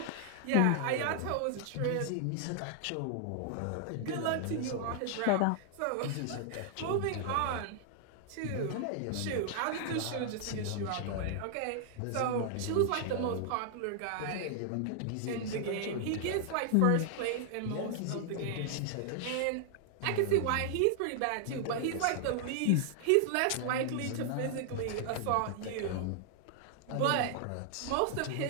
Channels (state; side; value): different; both; correlation 0.00